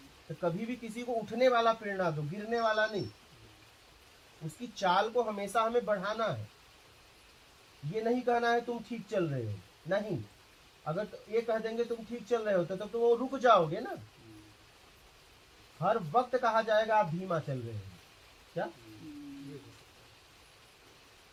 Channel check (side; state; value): both; identical; correlation 1.00